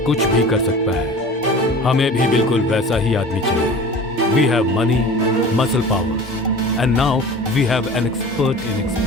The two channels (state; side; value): normal; both; correlation 0.40